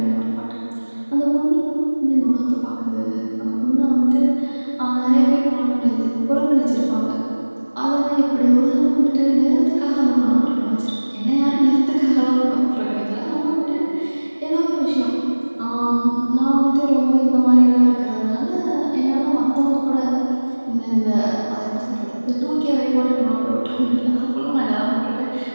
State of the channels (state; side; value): inverted; both; correlation -1.00